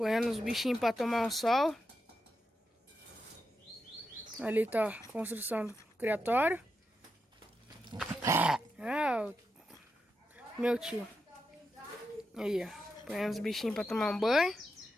os bichinhos pra tomar um sol. Ali tá a construção do criatório. Ah, o meu tio. Aí, ó. Ponhando os bichinhos pra tomar um banho.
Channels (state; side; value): normal; both; correlation 0.86